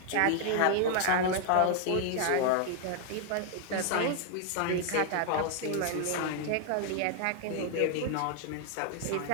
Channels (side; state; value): both; different; correlation 0.00